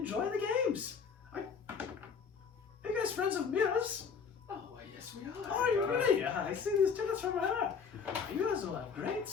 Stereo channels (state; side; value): quieter; right; 6.0 dB